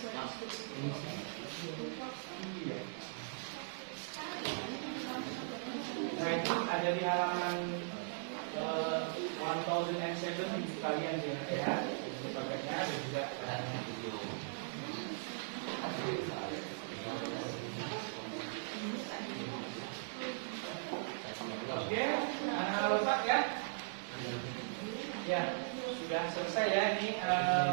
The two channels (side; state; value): left; silent; 52 dB below the other